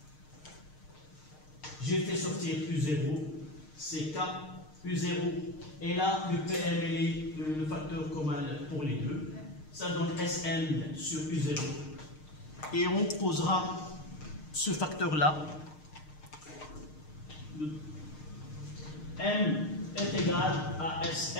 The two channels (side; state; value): right; late; 6.5 ms